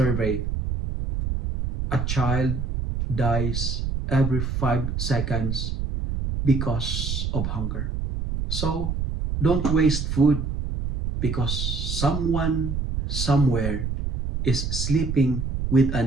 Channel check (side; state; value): right; noise; rumble, 2 dB below the sound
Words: a child dies every 5 seconds because of hunger. So, don't waste food because someone somewhere is sleeping with